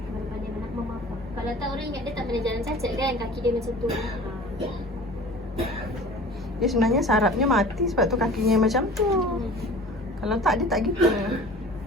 Pandai nak memaaf. Kalau tak orang ingat dia tak pernah jalan cacat kan. Kaki dia macam tu. Dia sebenarnya sarafnya mati sebab tu kakinya macam tu. Kalau tak dia tak gitu.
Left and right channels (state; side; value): normal; both; correlation 0.42